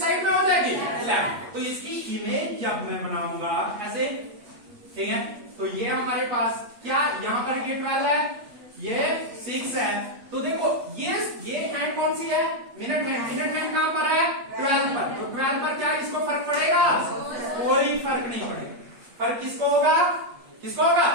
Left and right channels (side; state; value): left; late; 8.4 ms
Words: साइड में हो जाएगी, लेफ्ट। तो इसकी इमेज जब मैं बनाऊंगा ऐसे, ठीक है, तो ये हमारे पास क्या, यहां पर ये 12 है, ये 6 है। तो देखो ये हैंड कौन सी है? मिनट हैंड कहां पर है? 12 पर। तो 12 पर क्या इसको फर्क पड़ेगा? कोई फर्क नहीं पड़ेगा। फर्क किसको होगा? किसको होगा?